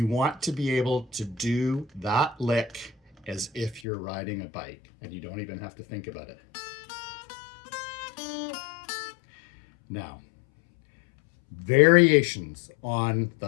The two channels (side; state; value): right; drops out; at 3.9 s